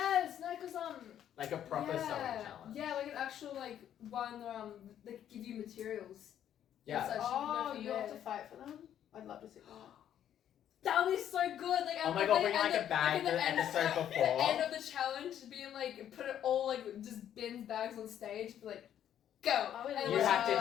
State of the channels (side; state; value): right; quieter; 10.3 dB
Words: No, because Like a proper yeah, sewing challenge. Yeah, like an actual like one they give you materials. Yeah. So Oh, you you go have from to fight for them? I'd love to see that. that would be so good. Like Oh my god, bring like a bag the episode At before. the end of the challenge, being like put it all like just bins bags on stage, be like, go. I would And You love have